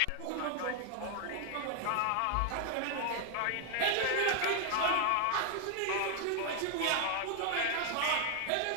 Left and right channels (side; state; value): both; different; correlation 0.00